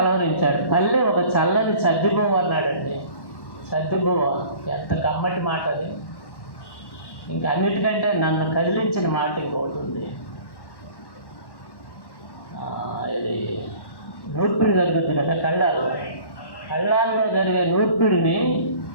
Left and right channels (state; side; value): late; right; 1.1 ms